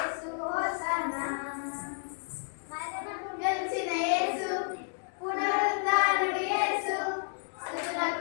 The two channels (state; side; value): silent; right; digital silence